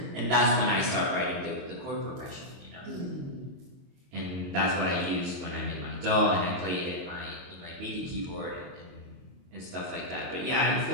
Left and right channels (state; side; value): late; left; 22 ms